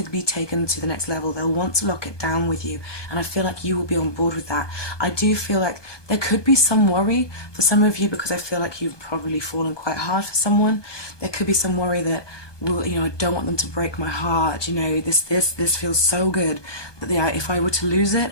be taken to the next level. They'll want to lock it down with you, and I feel like you will be on board with that. I do feel like there could be some worry for some of you, because I feel like you've probably fallen quite hard for someone. There could be some worry that, I don't want them to break my heart. This feels so good that if I were to lose it,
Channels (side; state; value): right; late; 1.2 ms